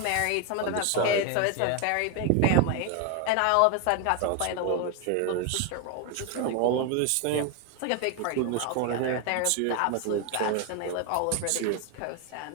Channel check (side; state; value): both; different; correlation 0.01